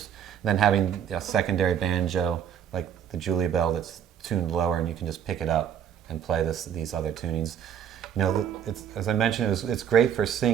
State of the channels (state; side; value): quieter; left; 9.0 dB